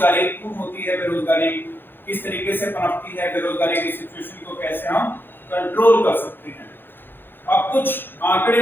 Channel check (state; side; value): late; right; 0.099 ms